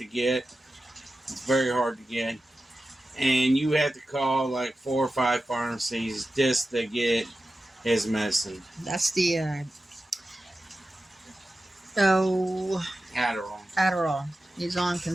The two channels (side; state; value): both; normal; correlation 0.93